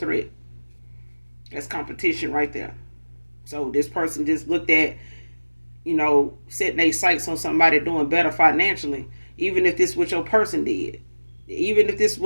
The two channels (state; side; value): inverted; both; correlation -1.00